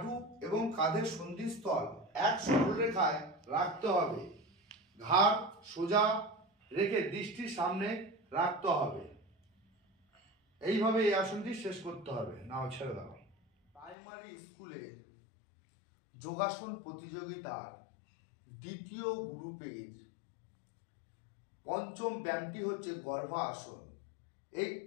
এবং কাঁধের সন্ধিস্থল এক সরলরেখায় রাখতে হবে। ঘাড় সোজা রেখে দৃষ্টির সামনে রাখতে হবে। এইভাবে এই আসনটি শেষ করতে হবে। নাও ছেড়ে দাও। প্রাইমারি স্কুলের যোগাসন প্রতিযোগিতার দ্বিতীয় গ্রুপের পঞ্চম ব্যায়ামটি হচ্ছে গর্ভা আসন। এই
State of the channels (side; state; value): right; drops out; at 14.0 s